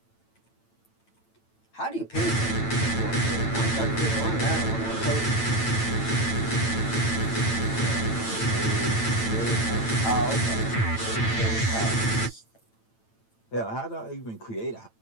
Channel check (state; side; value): late; right; 8.9 ms